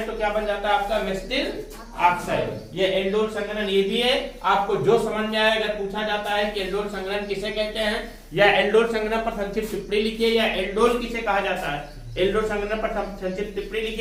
तो क्या बन जाता है आपका मेसिटिल ऑक्साइड। ये एल्डोल संघनन ये भी है, आपको जो समझ में आए, अगर पूछा जाता है कि एल्डोल संघनन किसे कहते हैं या एल्डोल संघनन पर संक्षिप्त टिप्पणी लिखिए या एल्डोल किसे कहा जाता है, एल्डोल संघनन पर संक्षिप्त टिप्पणी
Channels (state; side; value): identical; both; correlation 1.00